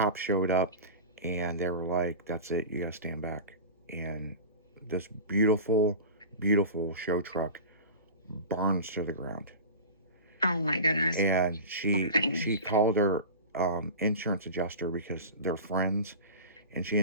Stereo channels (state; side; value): inverted; both; correlation -0.31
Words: showed up, and they were like, that's it, you gotta stand back. And this beautiful, beautiful show truck burns to the ground. Oh my goodness. And she called her insurance adjuster, because they're friends, and she